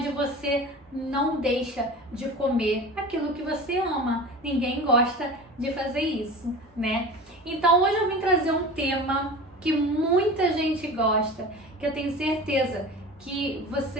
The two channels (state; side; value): normal; both; correlation 0.35